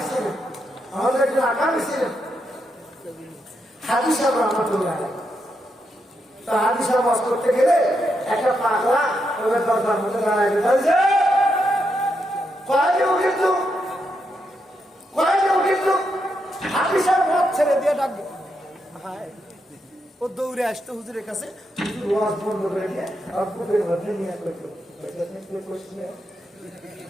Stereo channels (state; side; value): normal; both; correlation 0.82